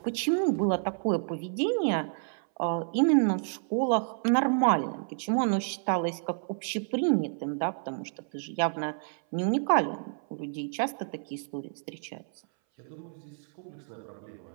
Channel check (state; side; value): silent; left; 58 dB below the other